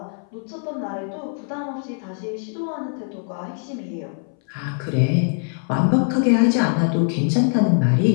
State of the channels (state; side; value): silent; right; 61 dB below the other